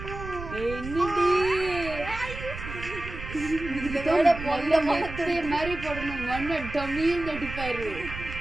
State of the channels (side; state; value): right; noise; rumble, 10 dB below the sound